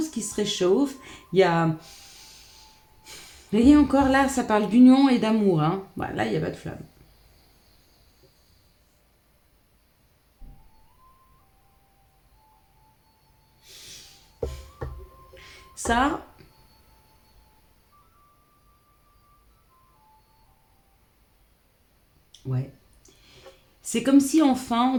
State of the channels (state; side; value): identical; both; correlation 1.00